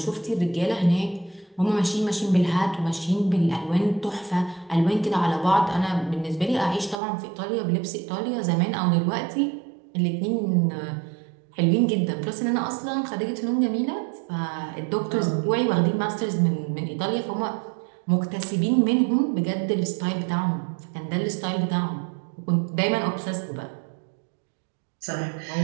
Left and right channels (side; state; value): left; drops out; at 7.0 s